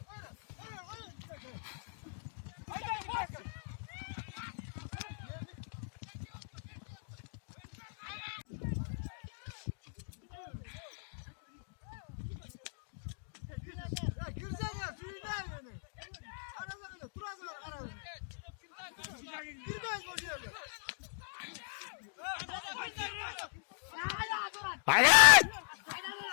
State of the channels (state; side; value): silent; right; digital silence